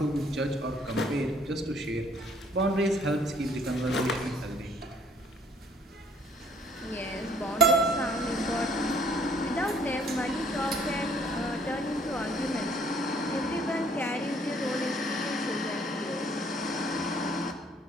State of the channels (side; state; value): both; normal; correlation 0.60